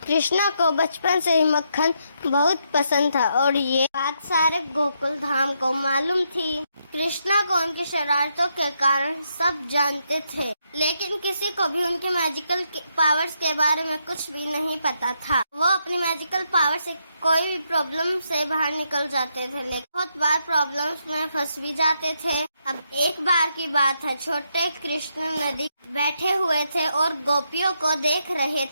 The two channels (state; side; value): inverted; both; correlation -0.79